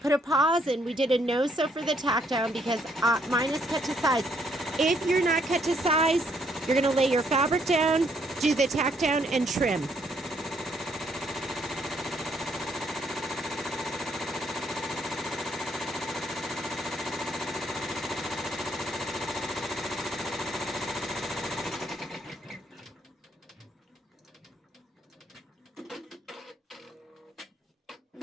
a pause, and we did a no-sew for the tack down because mine is cut to size. If you're not cut to size, you're going to lay your fabric down, do the tack down, and trim.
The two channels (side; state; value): both; normal; correlation 0.70